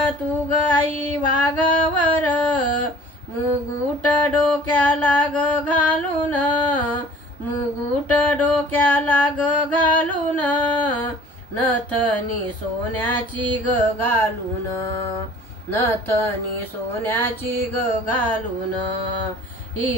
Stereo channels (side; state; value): both; normal; correlation 0.48